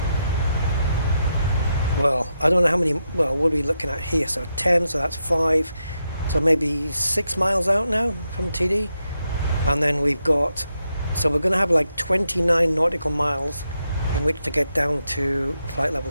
well, I don't know how many, well, what are we looking at here? So 10, so that's 5, so maybe 6 miles out now from TD. And then we've got, so we're going to have like 29 nautical miles in which to get down to flight level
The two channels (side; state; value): both; inverted; correlation -0.84